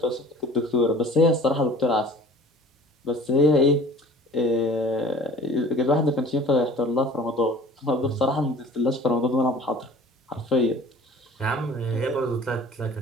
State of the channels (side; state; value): both; normal; correlation 0.45